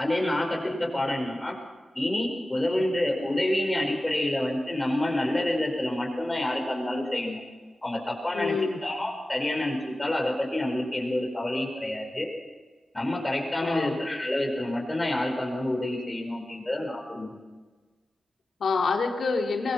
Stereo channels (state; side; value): normal; both; correlation 0.95